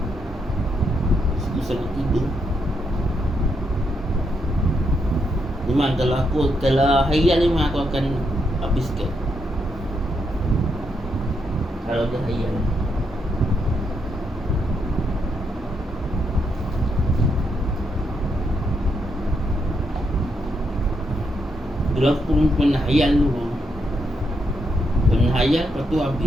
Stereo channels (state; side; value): normal; both; correlation 0.79